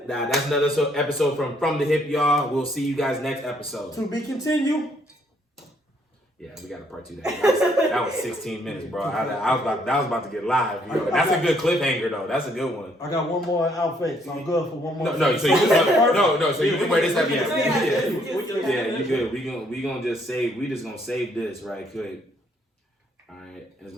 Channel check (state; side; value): normal; both; correlation 0.68